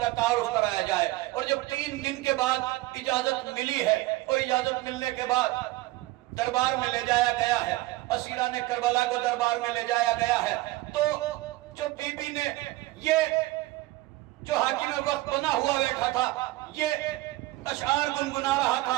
تعارف کرایا جائے۔ اور جب 3 دن کے بعد اجازت ملی ہے، اور اجازت ملنے کے بعد دربار میں لے جایا گیا ہے، اسیران کربلا کو دربار میں لے جایا گیا ہے، تو جو بی بی نے یہ جو حاکم وقت بنا ہوا بیٹھا تھا، یہ اشعار گنگنا رہا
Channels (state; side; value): quieter; left; 18.8 dB